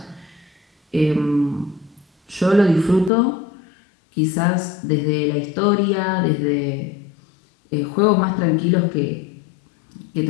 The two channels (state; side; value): drops out; right; at 3.1 s